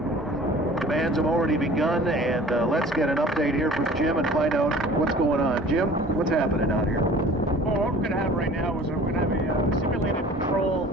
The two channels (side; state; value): both; normal; correlation 0.46